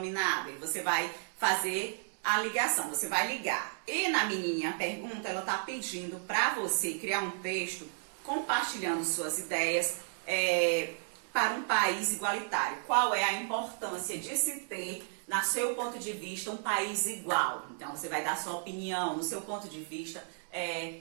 E você vai fazer a ligação, você vai ligar. E na minha pergunta, ela está pedindo para você criar um texto compartilhando suas ideias, para um país igualitário. Qual é a importância de se ter, no seu ponto de vista, um país igual? Então, você vai dar sua opinião, no seu ponto de vista,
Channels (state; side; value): silent; left; 56 dB below the other